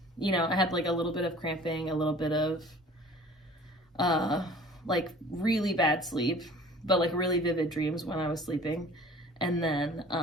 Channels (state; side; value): normal; both; correlation 0.48